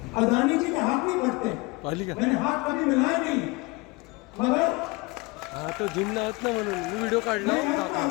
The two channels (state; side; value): quieter; right; 25.0 dB